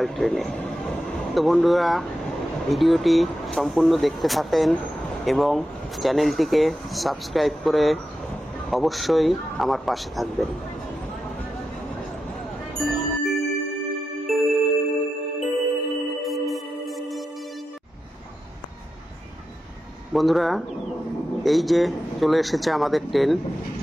ট্রেনে। তো বন্ধুরা, ভিডিওটি সম্পূর্ণ দেখতে থাকেন এবং চ্যানেলটিকে সাবস্ক্রাইব করে অবশ্যই আমার পাশে থাকবেন। বন্ধুরা, এই যে চলে এসেছে আমাদের ট্রেন।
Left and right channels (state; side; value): normal; both; correlation 0.90